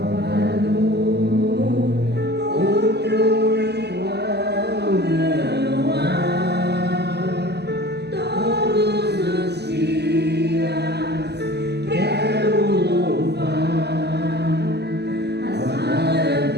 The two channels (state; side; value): late; left; 0.49 ms